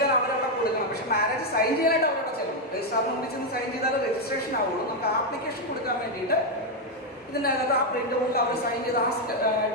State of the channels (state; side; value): normal; both; correlation 0.03